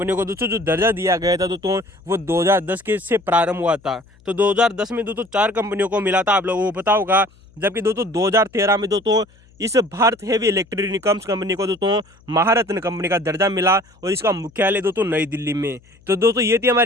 को दोस्तों जो दर्जा दिया गया था दोस्तों वो 2010 के से प्रारंभ हुआ था। तो 2010 में दोस्तों 4 कंपनियों को मिला था, आप लोगों को पता होगा। जबकि दोस्तों 2013 में दोस्तों इस भारत हेवी इलेक्ट्रॉनिक्स कंपनी को दोस्तों महारत्न कंपनी का दर्जा मिला और इसका मुख्यालय दोस्तों नई दिल्ली में। तो दोस्तों ये थी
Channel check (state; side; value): noise; left; hum, 29 dB below the sound